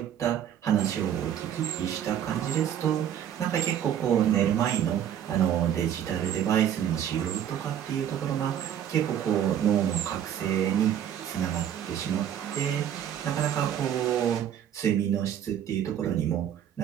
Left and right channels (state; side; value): quieter; left; 9.8 dB